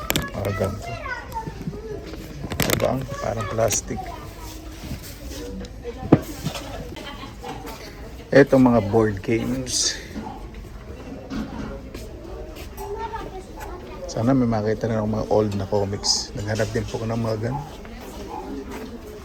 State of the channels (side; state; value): both; identical; correlation 1.00